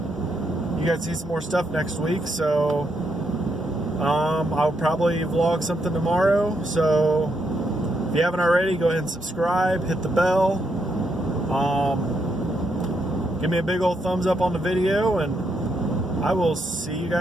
guys see some more stuff next week. So I'll probably vlog something tomorrow. So if you haven't already, go ahead and subscribe, hit the bell, give me a big old thumbs up on the video, and I will see you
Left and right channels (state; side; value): normal; both; correlation 0.78